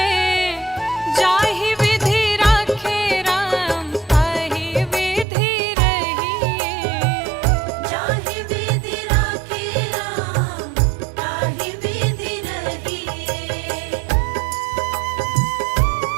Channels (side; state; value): left; drops out; at 5.2 s